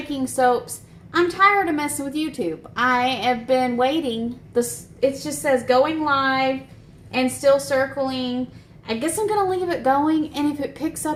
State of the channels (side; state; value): both; identical; correlation 1.00